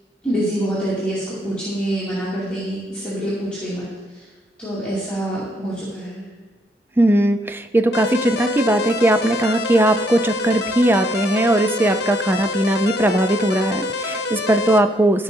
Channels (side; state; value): both; normal; correlation 0.72